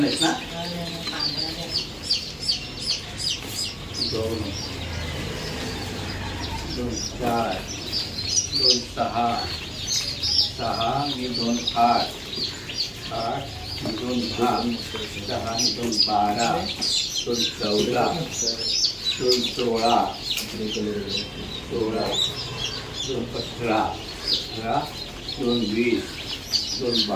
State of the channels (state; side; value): identical; both; correlation 1.00